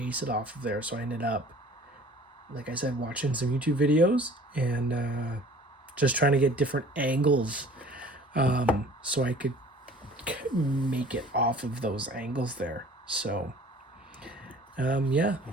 it off of there. So I ended up, like I said, watching some YouTube videos and just trying to get different angles so I could make it off of those angles there. So yeah,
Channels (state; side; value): normal; both; correlation 0.48